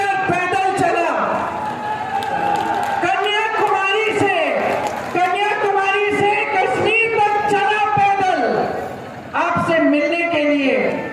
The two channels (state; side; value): identical; both; correlation 1.00